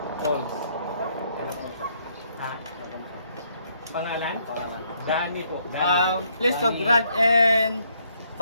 falls. Pangalan? Dani po. Please subscribe and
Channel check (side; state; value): both; inverted; correlation -0.71